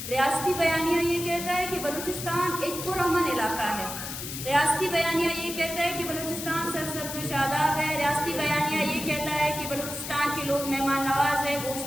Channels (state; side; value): noise; left; hiss, 7 dB below the sound